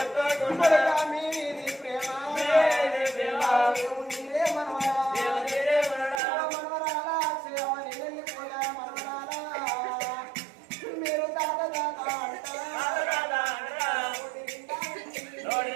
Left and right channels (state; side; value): drops out; left; at 6.2 s